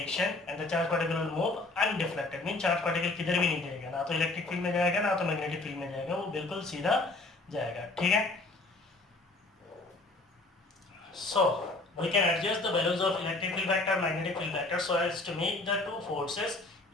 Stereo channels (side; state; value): right; quieter; 3.1 dB